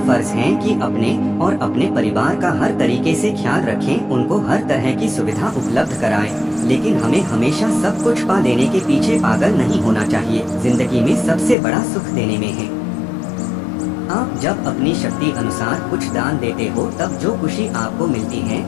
है कि अपने और अपने परिवार का हर तरीके से ख्याल रखें, उनको हर तरह की सुविधा उपलब्ध कराएं। लेकिन हमें हमेशा सब कुछ पा लेने के पीछे पागल नहीं होना चाहिए। जिंदगी में सबसे बड़ा सुख देने में है। आप जब अपनी शक्ति अनुसार कुछ दान देते हो तब जो खुशी आपको मिलती है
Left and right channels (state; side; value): drops out; right; at 11.6 s